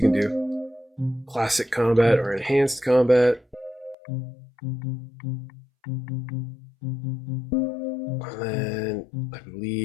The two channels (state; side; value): drops out; right; at 4.0 s